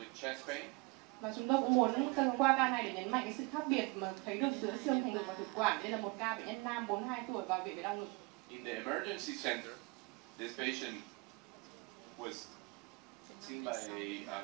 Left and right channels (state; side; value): quieter; left; 26.7 dB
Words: chest pain. Và chúng tôi cũng muốn qua ca này để nhấn mạnh cái sự khác biệt mà thấy được giữa xương thành ngực và thực quản. Đây là một ca bệnh nhân nam 42 tuổi vào viện về đau ngực. In the emergency center, this patient was seen by a